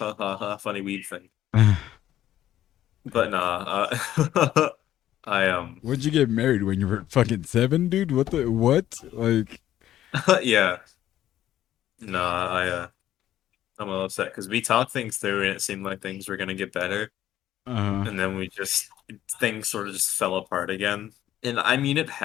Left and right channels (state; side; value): quieter; right; 12.4 dB